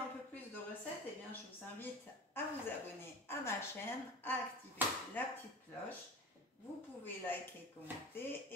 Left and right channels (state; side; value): normal; both; correlation 0.33